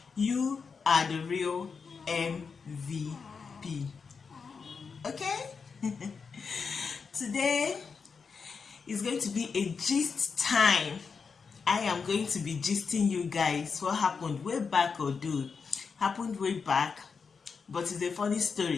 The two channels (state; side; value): quieter; right; 5.4 dB